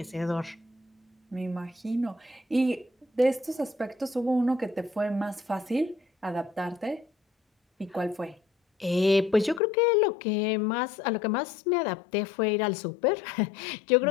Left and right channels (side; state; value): right; drops out; at 9.6 s